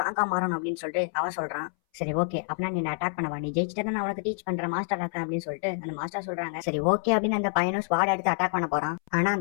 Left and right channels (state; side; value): silent; right; 59 dB below the other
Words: மாறணும் அப்படின்னு சொல்லிட்டு அவன் சொல்றான். சரி ஓகே அப்படின்னா நீ அட்டாக் பண்ணவா, நீ ஜெயிச்சுட்டு நான் உனக்கு டீச் பண்றேன் மாஸ்டர் இருக்கேன் அப்படின்னு சொல்லிட்டு அந்த மாஸ்டர் சொல்றாங்க. சரி ஓகே அப்படின்னு அந்த பையனும் ஸ்வாட் எடுத்து அட்டாக் பண்ண போறான். ஆனா